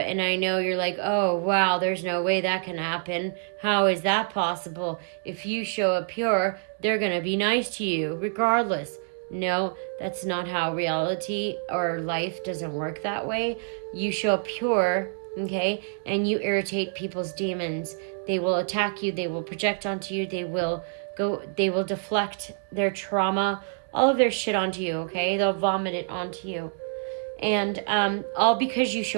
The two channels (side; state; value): left; silent; digital silence